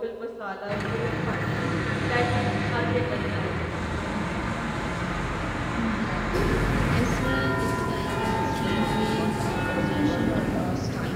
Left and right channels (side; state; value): both; identical; correlation 1.00